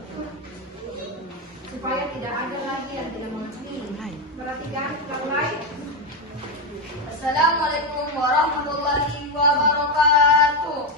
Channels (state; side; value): normal; both; correlation 0.08